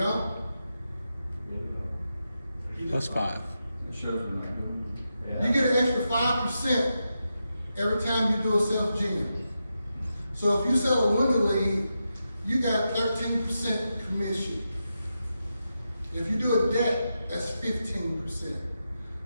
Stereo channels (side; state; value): both; inverted; correlation -0.88